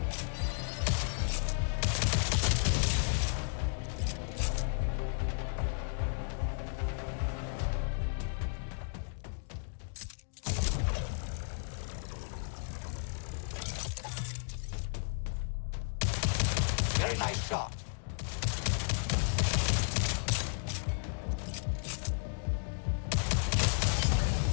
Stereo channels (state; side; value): silent; right; digital silence